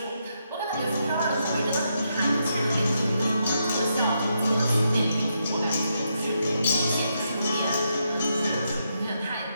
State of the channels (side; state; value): both; inverted; correlation -0.80